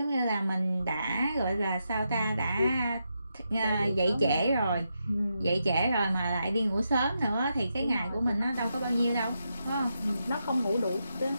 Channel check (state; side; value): inverted; both; correlation -0.84